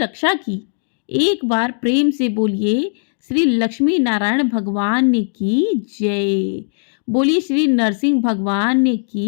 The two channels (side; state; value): right; silent; digital silence